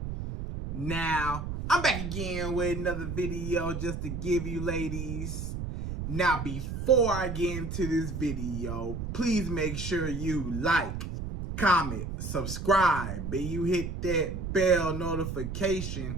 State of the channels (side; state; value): right; noise; rumble, 5 dB below the sound